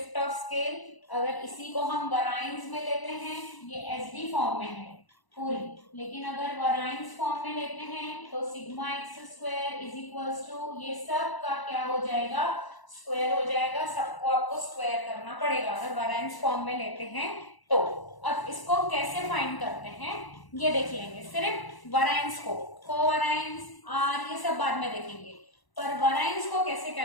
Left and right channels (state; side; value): late; right; 1.0 ms